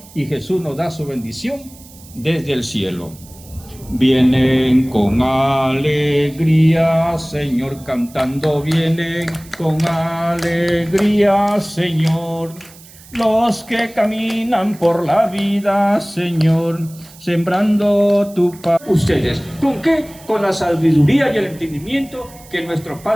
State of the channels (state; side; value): noise; right; hiss, 22 dB below the sound